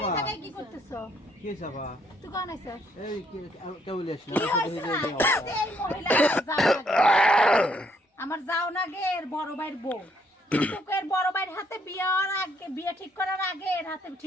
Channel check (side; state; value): both; normal; correlation 0.70